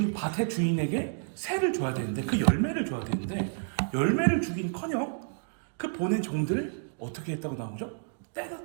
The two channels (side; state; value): left; silent; digital silence